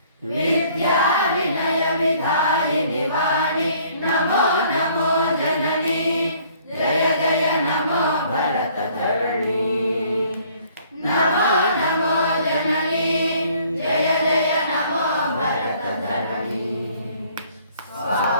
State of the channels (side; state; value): both; inverted; correlation -0.59